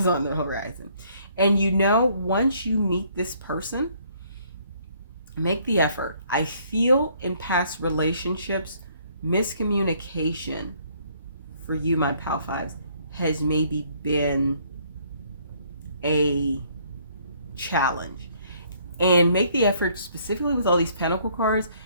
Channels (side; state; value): both; inverted; correlation -0.64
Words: on the horizon. And you know, once you meet this person, make the effort. I feel in past relationships, miscommunication for you, my pal fives, has maybe been a challenge. And make the effort, specifically with all these pentacle cards.